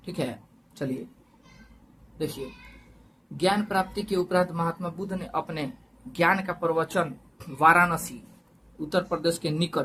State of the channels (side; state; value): both; identical; correlation 1.00